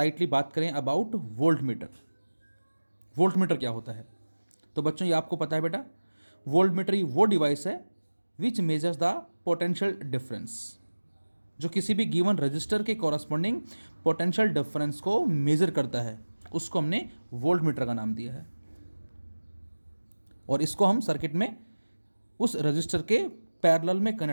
बात करें about volt meter. Volt meter क्या होता है? तो बच्चों ये आपको पता है बेटा, वोल्ट मीटर ही वो डिवाइस है विच मेजर्स द पोटेंशियल डिफरेंस, जो किसी भी गिवन रजिस्टर के कॉरस्पॉन्डिंग पोटेंशियल डिफरेंस को मेजर करता है. उसको हमने वोल्ट मीटर का नाम दिया है और इसको हम सर्किट में उस रजिस्टर के पैरेलल में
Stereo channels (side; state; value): both; inverted; correlation -1.00